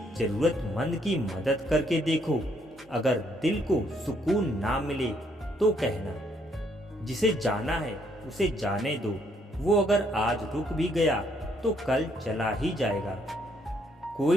जरूरतमंद की मदद करके देखो, अगर दिल को सुकून ना मिले तो कहना। जिसे जाना है उसे जाने दो, वो अगर आज रुक भी गया तो कल चला ही जाएगा।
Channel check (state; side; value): normal; both; correlation 0.70